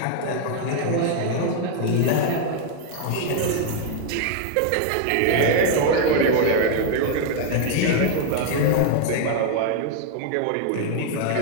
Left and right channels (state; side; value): different; both; correlation 0.00